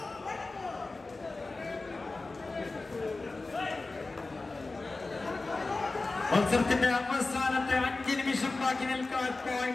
മത്സരത്തിന്റെ അവസാനത്തെ 5 നിമിഷം ബാക്കി നിൽക്കാൻ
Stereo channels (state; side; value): quieter; right; 3.4 dB